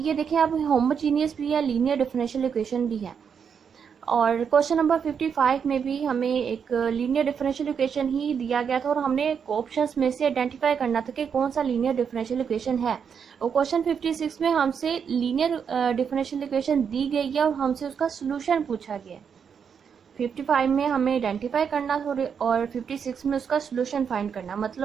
देखें, अब होमोजीनियस भी है, लीनियर डिफरेंशियल इक्वेशन भी है। और क्वेश्चन नंबर 55 में भी हमें एक लीनियर डिफरेंशियल इक्वेशन ही दिया गया था और हमने ऑप्शंस में से आइडेंटिफाई करना था कि कौन सा लीनियर डिफरेंशियल इक्वेशन है। और क्वेश्चन 56 में हमसे लीनियर डिफरेंशियल इक्वेशन दी गई है और हमसे उसका सोल्यूशन पूछा गया। 55 में हमें आइडेंटिफाई करना और 56 में उसका सोल्यूशन फाइंड करना।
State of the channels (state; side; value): quieter; left; 7.0 dB